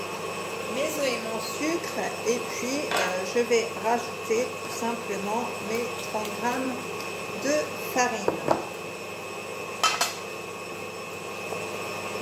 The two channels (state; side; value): identical; both; correlation 1.00